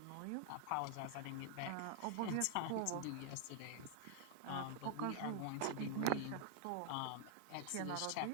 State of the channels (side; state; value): both; different; correlation 0.00